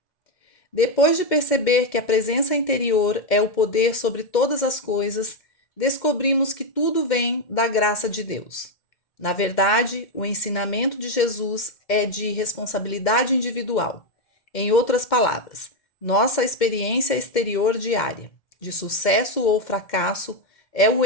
Depois de perceber que a presença interior é o poder sobre todas as coisas, descobrimos que tudo vem da graça de Deus. Na verdade, o ensinamento de Jesus é de responsabilidade individual. Em outras palavras, nossa experiência exterior diária, de sucesso ou fracasso, é o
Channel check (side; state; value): right; late; 2.1 ms